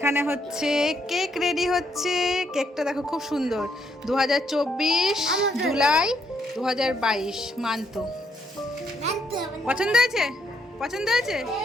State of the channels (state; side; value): normal; both; correlation 0.74